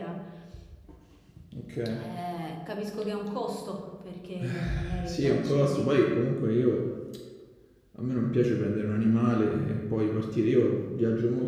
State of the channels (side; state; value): both; identical; correlation 1.00